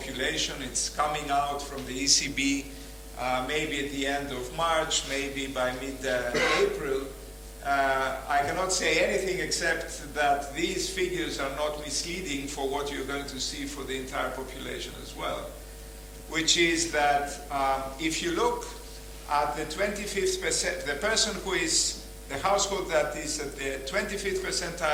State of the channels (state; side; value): identical; both; correlation 1.00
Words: It's coming out from the ECB maybe at the end of March, maybe by mid-April. I cannot say anything except that these figures are not misleading for what you're going to see for the entire population as well, which is that if you look at the 25th percent, the person who is the household that is at the 25th